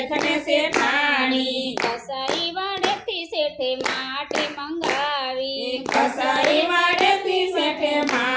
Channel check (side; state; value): both; identical; correlation 1.00